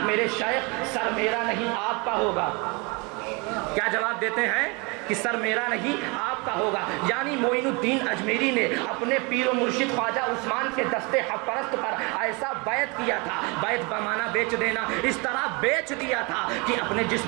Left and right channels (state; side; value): quieter; left; 29.1 dB